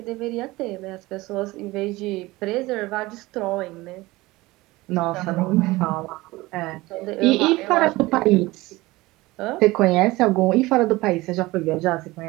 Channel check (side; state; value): left; quieter; 20.1 dB